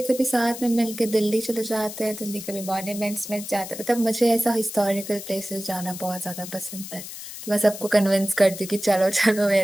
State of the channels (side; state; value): left; noise; hiss, 11 dB below the sound